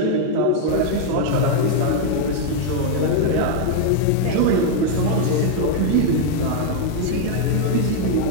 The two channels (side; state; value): both; different; correlation 0.00